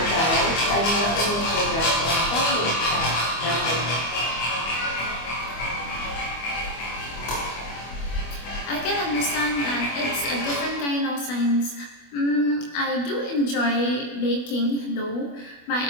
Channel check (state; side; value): late; right; 25 ms